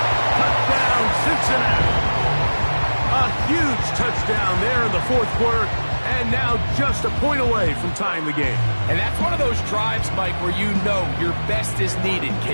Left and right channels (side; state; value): both; inverted; correlation -1.00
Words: Touchdown, Cincinnati. A huge touchdown there in the fourth quarter, and now just a point away from tying the game. And that's one of those drives, Mike, where you know your best is needed.